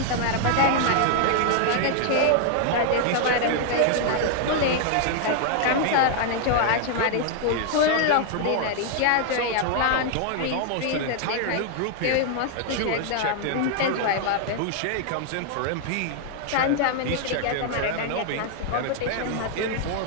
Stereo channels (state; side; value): different; both; correlation 0.00